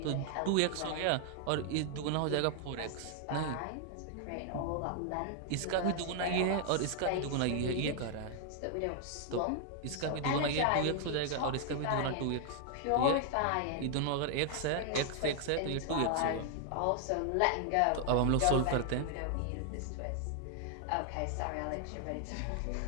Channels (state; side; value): different; both; correlation 0.00